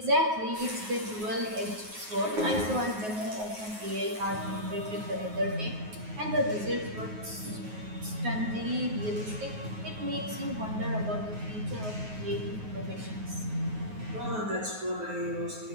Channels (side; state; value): left; late; 9.4 ms